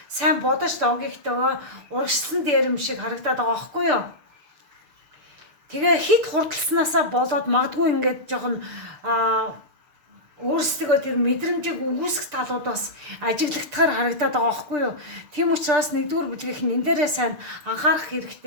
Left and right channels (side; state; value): left; late; 6.7 ms